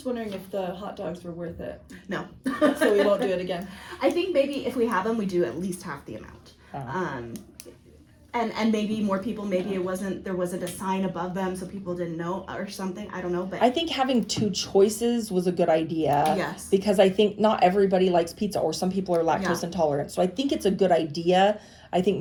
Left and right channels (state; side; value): identical; both; correlation 1.00